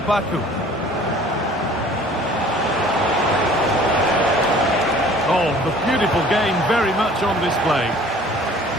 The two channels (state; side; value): normal; both; correlation 0.51